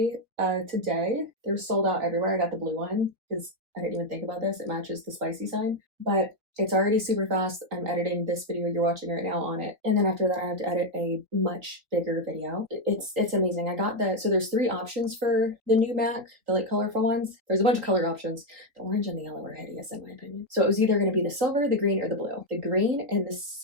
today. They're sold out everywhere. I got the blue one because I didn't even think about this. It matches the spicy sign, but it's already super fast. I'm editing this video you're watching right now on it. And then after that, I have to edit a much bigger video. It's amazing. I got so there's 3 options for the new Mac, the like colorful ones. There's a bunch of color options. The orange and the yellow are hideous in my opinion. So it was either going to be the silver, the green, or the blue. The green and the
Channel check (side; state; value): left; late; 3.7 ms